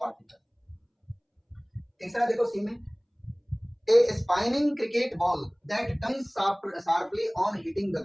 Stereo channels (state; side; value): identical; both; correlation 1.00